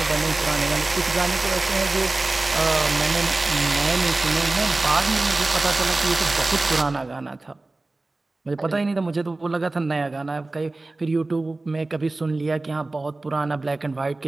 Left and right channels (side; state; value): left; quieter; 3.1 dB